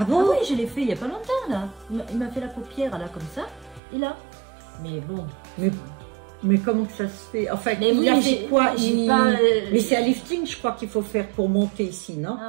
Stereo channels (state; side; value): drops out; left; at 3.8 s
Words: bon? Ah oui, je l'ai fait il n'y a pas longtemps, là. Il m'a fait la paupière, là, comme ça. Et là. Mais bon. Mais comment que ça se fait? Enfin, Mais il oui, a mais fait quoi? j'ai pas. Mais c'est un lifting, je crois qu'il faut faire pour monter ici, non?